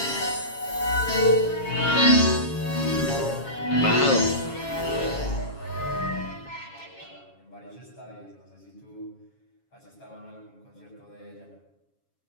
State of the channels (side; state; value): right; late; 7.3 ms